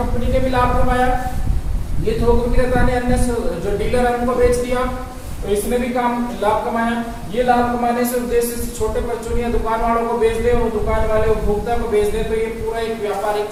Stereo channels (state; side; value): identical; both; correlation 1.00